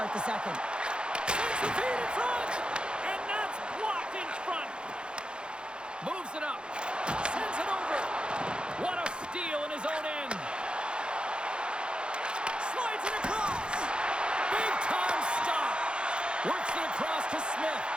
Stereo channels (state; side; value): late; left; 0.052 ms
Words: the second. Sends the feed in front, and that's blocked in front. Moves it up, sends it over. What a steal in his own end. Slides it across. Big time stop. Works it across to Smith.